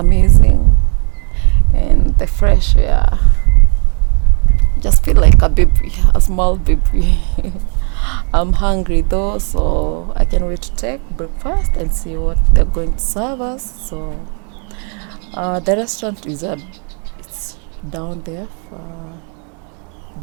And the fresh air. Just feel like a baby, a small baby. I'm hungry though, so I can't wait to take breakfast and see what they're going to serve us. So the restaurant it's down there,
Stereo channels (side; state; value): left; quieter; 39.2 dB